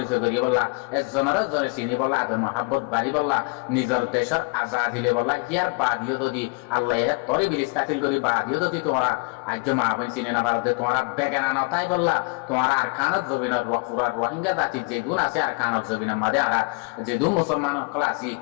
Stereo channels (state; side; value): quieter; right; 30.7 dB